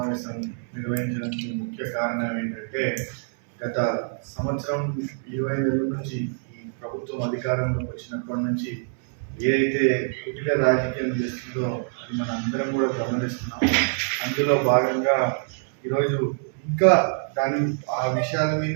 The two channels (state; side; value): silent; left; 62 dB below the other